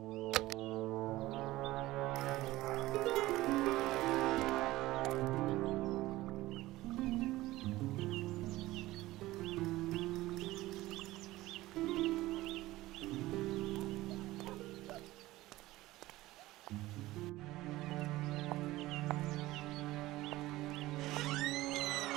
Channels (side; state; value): left; quieter; 17.7 dB